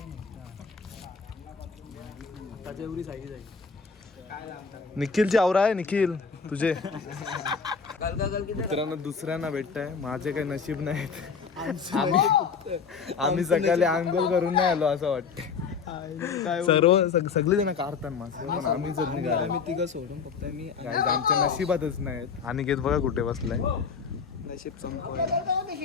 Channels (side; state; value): right; quieter; 5.7 dB